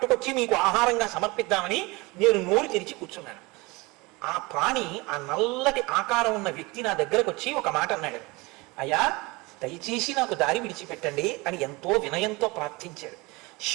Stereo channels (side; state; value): left; quieter; 24.4 dB